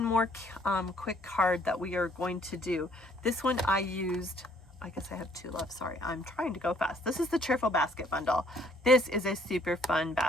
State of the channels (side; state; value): both; normal; correlation 0.62